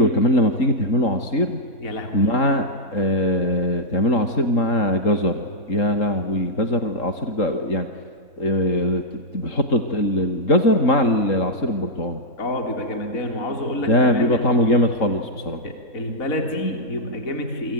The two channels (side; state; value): right; late; 3.8 ms